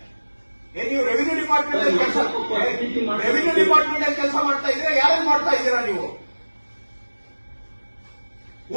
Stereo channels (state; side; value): inverted; both; correlation -1.00